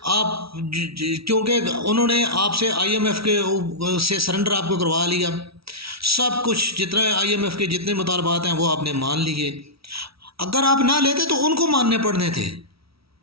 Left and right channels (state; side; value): late; left; 0.76 ms